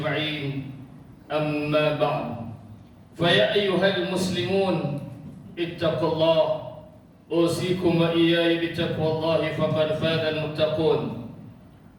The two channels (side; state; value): both; identical; correlation 1.00